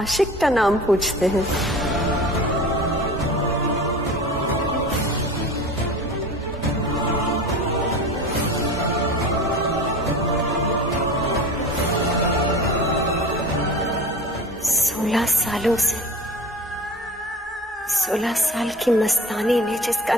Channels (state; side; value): normal; both; correlation 0.35